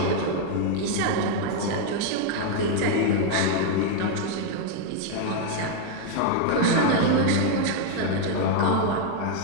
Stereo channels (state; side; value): different; both; correlation 0.00